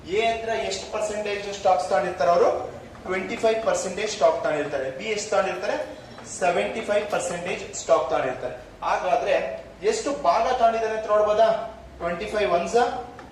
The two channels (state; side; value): identical; both; correlation 1.00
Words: ಎ ಹತ್ರ ಎಷ್ಟು ಪರ್ಸೆಂಟೇಜ್ ಸ್ಟಾಕ್ಸ್ ತಗೊಂಡಿರ್ತಾರೆ, ಅವರು 25% ಸ್ಟಾಕ್ ತಗೊಂಡಿರ್ತಾರೆ. ಬಿ ಎಷ್ಟು ತಗೊಂಡಿರ್ತಾರೆ, 75% ಸ್ಟಾಕ್ ತಗೊಂಡಿರ್ತಾರೆ. ಹಾಗಾದ್ರೆ ಎಷ್ಟು ಭಾಗ ತಗೊಂಡಿದ್ದಾರೆ ಅಂತ ನೋಡ್ಬೋದಾ? 25 1s